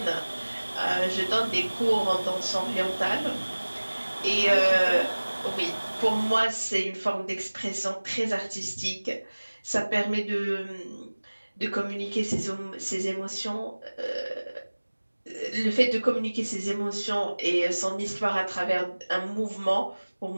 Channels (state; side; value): inverted; both; correlation -1.00